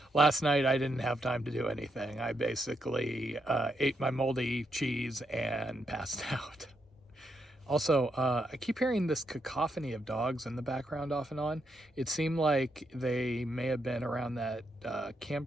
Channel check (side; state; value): both; normal; correlation 0.80